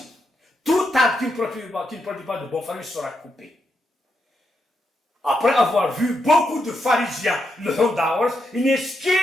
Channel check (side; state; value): both; normal; correlation 0.82